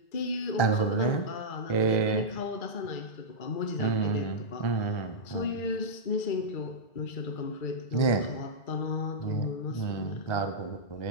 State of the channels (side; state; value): right; late; 1.4 ms